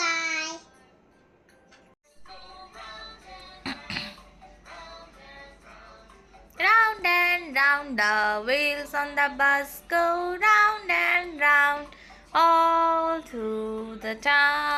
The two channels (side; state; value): both; identical; correlation 1.00